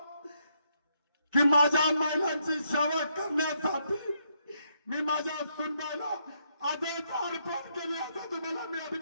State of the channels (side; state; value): both; inverted; correlation -0.76